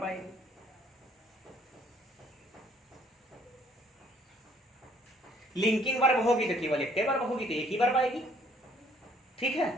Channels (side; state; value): both; normal; correlation 0.62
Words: आएगी। लिंकिंग वर्ब होगी तो केवल एक वर्ब होगी, तो एक ही वर्ब आएगी। ठीक है।